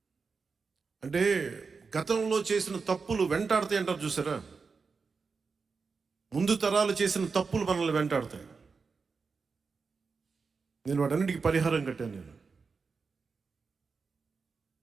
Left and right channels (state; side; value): quieter; left; 4.9 dB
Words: అంటే గతంలో చేసిన తప్పులు వెంటాడతాయి అంటారు చూసారా, ముందు తరాలు చేసిన తప్పులు మనల్ని వెంటాడతాయి. నేను వాటన్నిటికీ పరిహారం కట్టాను. నేను